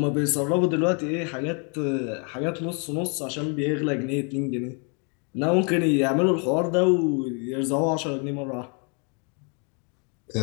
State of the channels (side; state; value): right; quieter; 36.9 dB